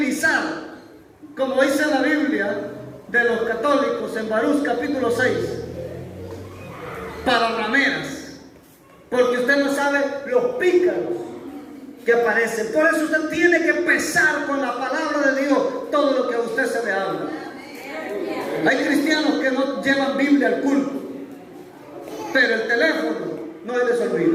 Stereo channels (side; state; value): both; identical; correlation 1.00